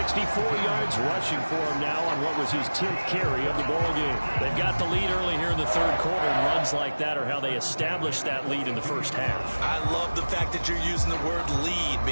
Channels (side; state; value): both; inverted; correlation -1.00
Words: yards rushing for him now on what was his 10th carry of the ball game. They've got the lead early here in the third quarter, and runs like that are how they established that lead in the first half. I love the fact that you're using the word lead